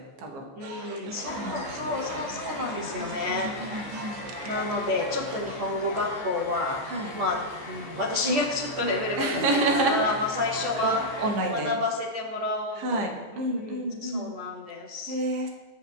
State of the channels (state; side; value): late; left; 14 ms